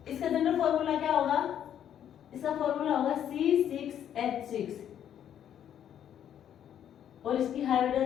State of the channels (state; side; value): quieter; right; 9.8 dB